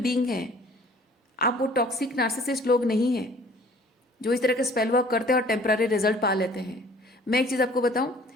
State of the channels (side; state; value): both; normal; correlation 0.52